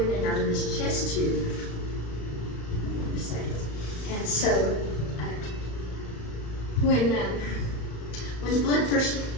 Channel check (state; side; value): late; right; 35 ms